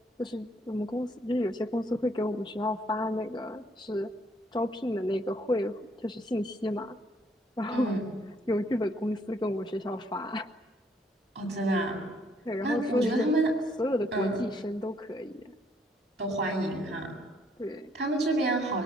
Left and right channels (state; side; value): normal; both; correlation 0.68